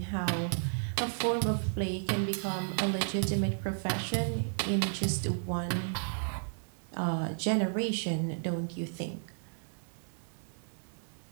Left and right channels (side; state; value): left; silent; digital silence